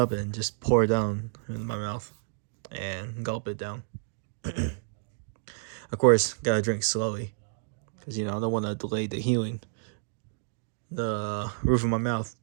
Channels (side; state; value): left; silent; digital silence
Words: and just pour it down in my mouth and gulp it down. Of course, gotta drink slowly because I don't want to delay the healing. The roof of my mouth,